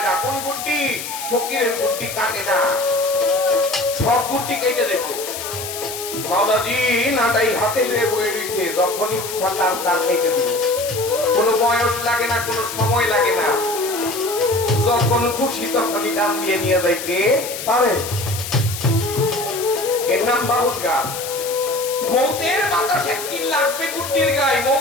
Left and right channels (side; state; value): left; noise; hiss, 8 dB below the sound